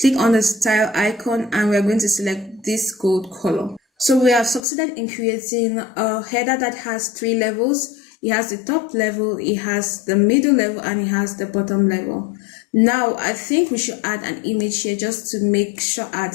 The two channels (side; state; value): right; drops out; at 4.6 s